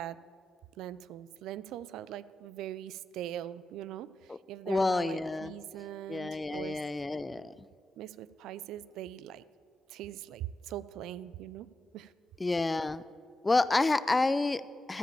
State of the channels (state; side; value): normal; both; correlation 0.90